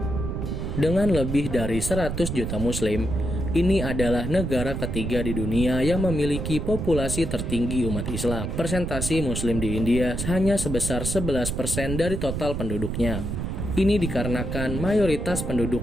Dengan lebih dari 100 juta Muslim, ini adalah negara ketiga di dunia yang memiliki populasi tertinggi umat Islam. Persentase Muslim di India hanya sebesar 11% dari total penduduknya. Ini dikarenakan mayoritas penduduk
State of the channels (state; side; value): noise; right; rumble, 3 dB below the sound